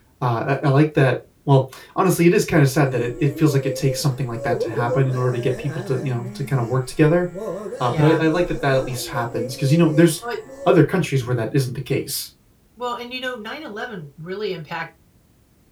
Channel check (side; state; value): both; identical; correlation 1.00